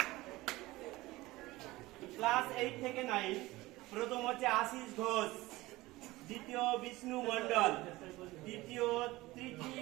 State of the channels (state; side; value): quieter; left; 19.4 dB